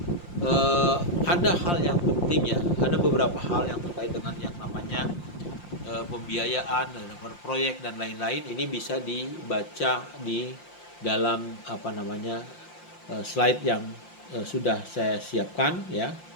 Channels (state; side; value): late; right; 5.7 ms